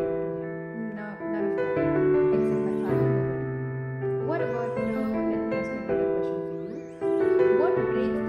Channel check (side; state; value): both; identical; correlation 1.00